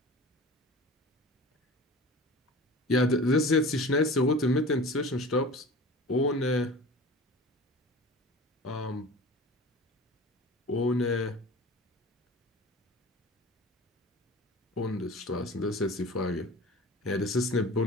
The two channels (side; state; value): both; normal; correlation 0.39